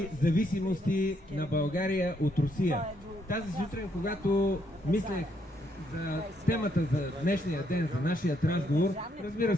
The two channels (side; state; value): both; normal; correlation 0.74